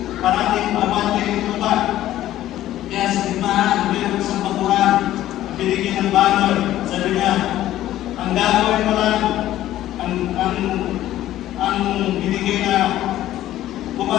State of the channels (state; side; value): quieter; right; 13.6 dB